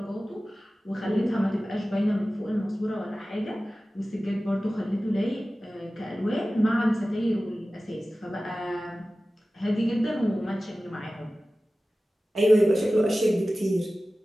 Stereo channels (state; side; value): normal; both; correlation 0.96